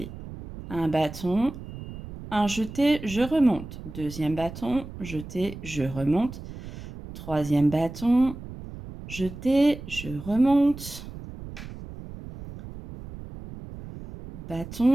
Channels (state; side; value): noise; right; rumble, 12 dB below the sound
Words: Un bâton, un jeté, je remonte. Deuxième bâton, jeté, je remonte. Troisième bâton, jeté, je remonte.